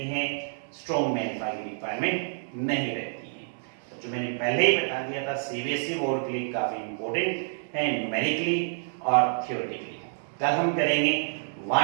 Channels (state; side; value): silent; left; 59 dB below the other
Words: है, स्ट्रॉन्ग में अल्फा की रिक्वायरमेंट नहीं रहती है। तो जो मैंने पहले ही बता दिया था, सीबीएसई बोर्ड के लिए काफी इंपॉर्टेंट है न्यूमेरिकली और थियोरेटिकली। कल हम करेंगे